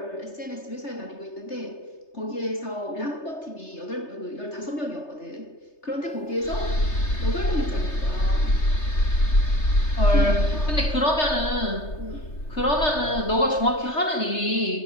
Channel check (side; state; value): right; late; 3.3 ms